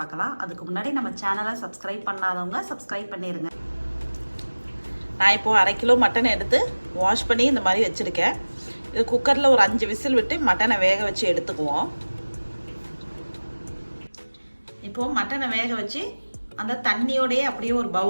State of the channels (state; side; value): inverted; both; correlation -1.00